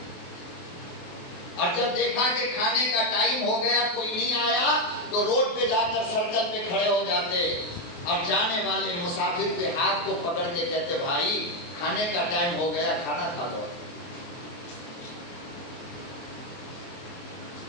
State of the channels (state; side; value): late; right; 24 ms